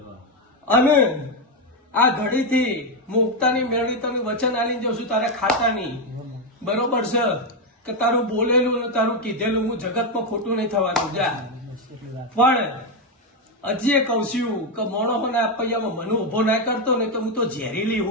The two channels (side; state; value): both; normal; correlation 0.06